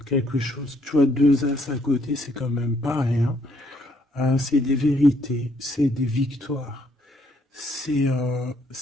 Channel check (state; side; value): normal; both; correlation 0.69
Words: quelque chose, tu vois, 2 as à côté, c'est quand même pas rien. C'est des vérités, c'est des victoires. C'est